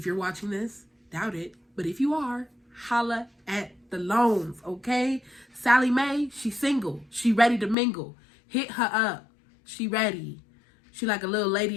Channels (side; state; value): right; drops out; at 7.8 s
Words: you're watching this, doubt it, but if you are, holla at the loans, okay? Sally Mae, she's single. She ready to mingle. Hit her up. She ready. She like a little